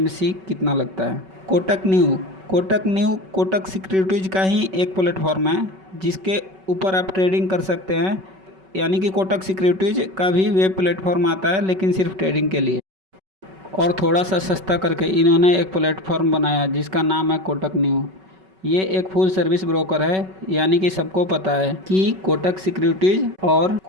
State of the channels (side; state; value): left; late; 5.3 ms